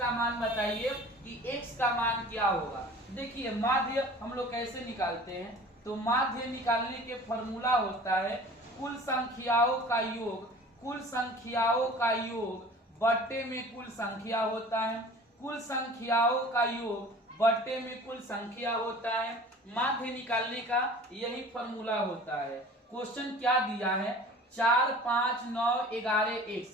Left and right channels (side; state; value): both; normal; correlation 0.44